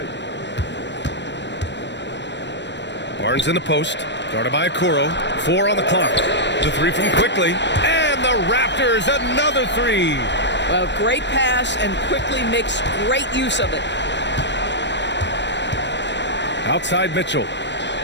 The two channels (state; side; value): late; right; 0.52 ms